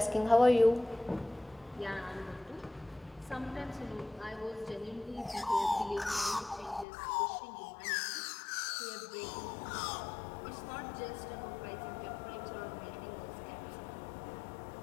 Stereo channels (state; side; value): drops out; right; at 6.9 s